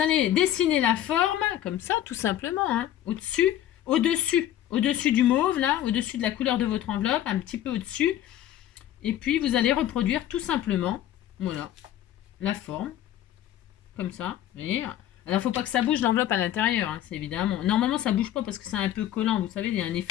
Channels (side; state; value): right; quieter; 12.1 dB